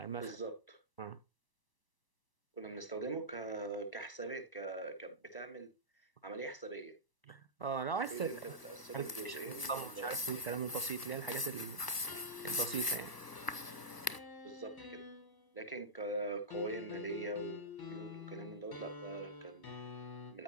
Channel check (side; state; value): right; late; 1.0 ms